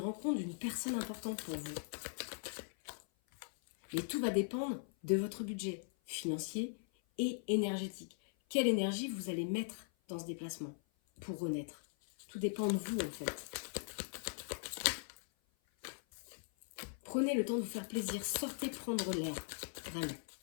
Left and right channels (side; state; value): right; silent; 51 dB below the other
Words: d'une personne importante pour vous. Et tout va dépendre de votre budget financier et énergétique. Quelle énergie vous allez mettre dans ce déplacement pour renaître? Tout dépend de vous en fait. Prenez le temps de vous faire plaisir. Sortez prendre l'air. Vraiment.